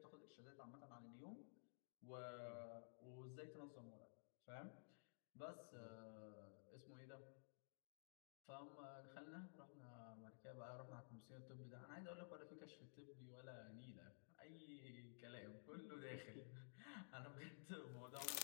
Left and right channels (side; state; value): right; silent; digital silence